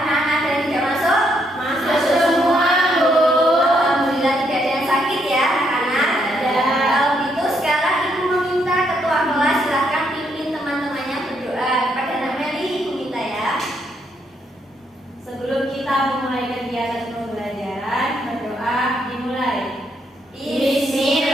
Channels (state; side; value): normal; both; correlation 0.75